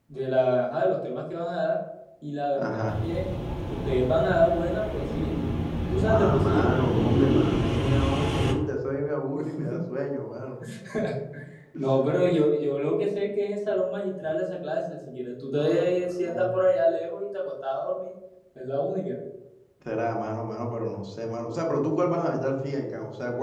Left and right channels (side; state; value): both; identical; correlation 1.00